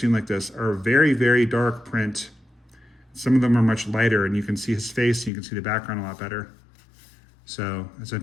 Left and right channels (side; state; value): right; drops out; at 5.3 s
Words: like this, are very, very dark print. Some of them are much lighter, and you can see his face, and you can see the background a lot better. So it's